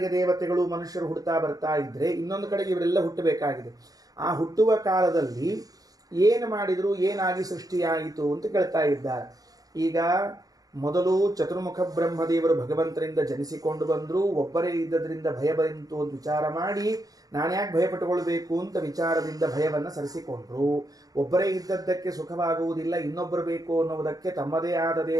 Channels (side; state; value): left; late; 0.18 ms